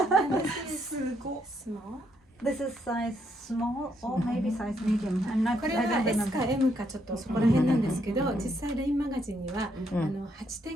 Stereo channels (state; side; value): normal; both; correlation 0.74